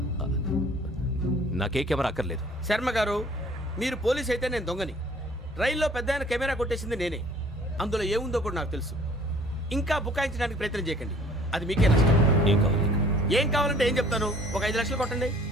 నాకే కెమెరా అక్కర్లేదు. శర్మ గారు, మీరు పోలీస్ అయితే నేను దొంగని. రైల్లో పెద్ద ఆయన కెమెరా కొట్టేసింది నేనే. అందులో ఏముందో కూడా నాకు తెలుసు. ఇంకా బుకాయించడానికి ప్రయత్నం చేయకండి, అది మీకే నష్టం. ఏం కావాలి నీకు? ఏం కావాలంటే ఏం చెప్తాను. ఒక 5 లక్షలు కొట్టండి.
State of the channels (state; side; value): normal; both; correlation 0.54